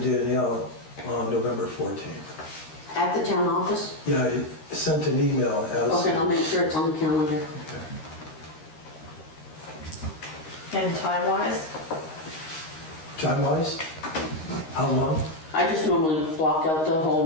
Danielle on November 14th. At the town office? Yeah, I sent an email as... Okay, I'll make sure it's on the calendar. Okay. And time-wise? Time-wise? How long? I just normally block out the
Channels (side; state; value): right; late; 13 ms